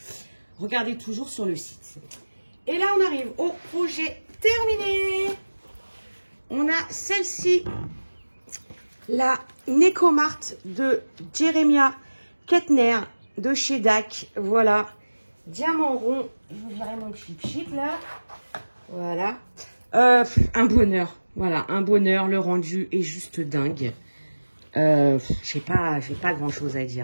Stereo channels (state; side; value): inverted; both; correlation -1.00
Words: sur le site. Et là, on arrive au projet terminé. On a celle-ci, la Necomart de Jeremiah Kettner de chez DAC. Voilà, diamant rond. Je vous dirai mon chip là. Voilà. Un bonheur. Voilà, un bonheur. Le rendu est juste dingue. J'ai pas grand chose à